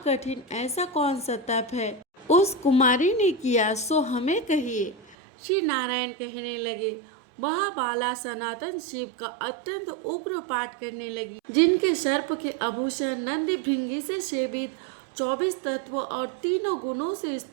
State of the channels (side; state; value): left; drops out; at 5.2 s